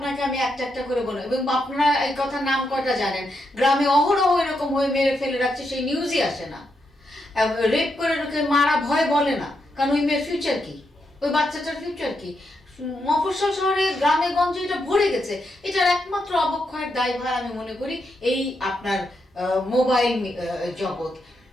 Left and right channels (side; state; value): both; normal; correlation 0.82